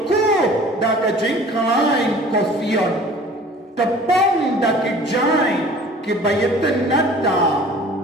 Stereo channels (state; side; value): normal; both; correlation 0.47